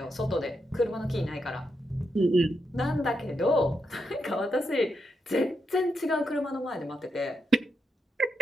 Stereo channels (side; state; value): both; normal; correlation 0.83